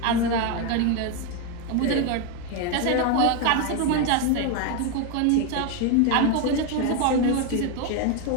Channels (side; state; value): both; different; correlation 0.02